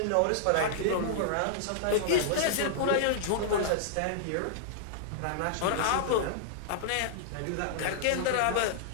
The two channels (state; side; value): different; both; correlation -0.01